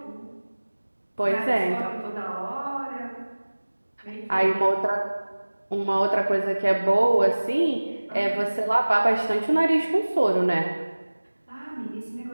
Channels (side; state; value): both; inverted; correlation -1.00